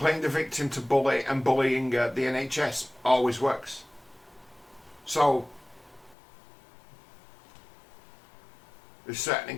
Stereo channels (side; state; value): right; drops out; at 6.2 s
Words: the victim to bully and bullying the NHS always works. So, they've set an